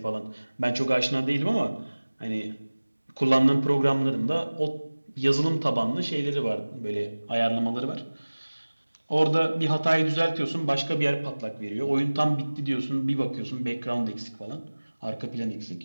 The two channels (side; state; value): both; inverted; correlation -1.00